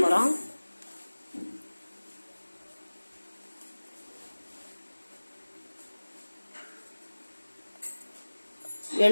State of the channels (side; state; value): both; inverted; correlation -1.00